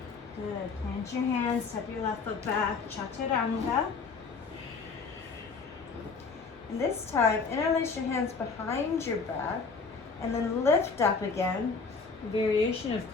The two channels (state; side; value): quieter; right; 4.7 dB